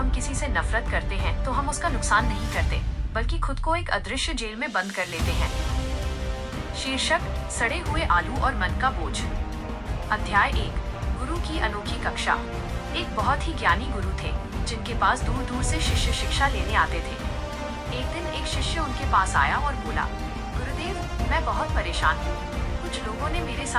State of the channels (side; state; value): both; identical; correlation 1.00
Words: किसी से नफरत करते हैं तो हम उसका नुकसान नहीं करते, बल्कि खुद को एक अदृश्य जेल में बंद कर लेते हैं। शीर्षक: सड़े हुए आलू और मन का बोझ। अध्याय 1: गुरु की अनोखी कक्षा। एक बहुत ही ज्ञानी गुरु थे, जिनके पास दूर दूर से शिष्य शिक्षा लेने आते थे। एक दिन एक शिष्य उनके पास आया और बोला, गुरुदेव, मैं बहुत परेशान हूँ। कुछ लोगों ने मेरे